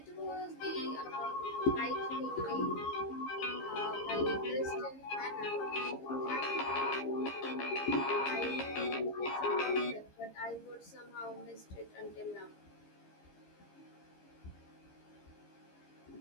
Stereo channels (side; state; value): right; late; 15 ms